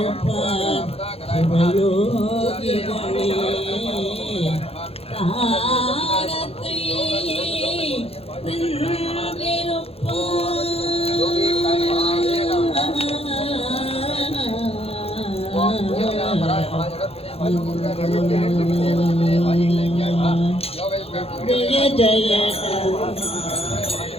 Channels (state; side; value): late; right; 0.29 ms